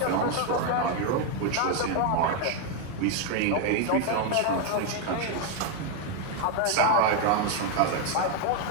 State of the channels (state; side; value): different; both; correlation 0.01